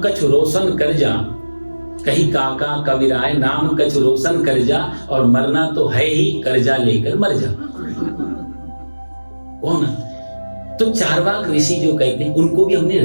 कछ रोशन कर जा, कहीं काका कविराय नाम कछ रोशन कर जा, और मरना तो है ही, कर्जा लेकर मर जा। कौन? तो चारवाक ऋषि जो कहते हैं, उनको भी हमने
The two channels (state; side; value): inverted; both; correlation -1.00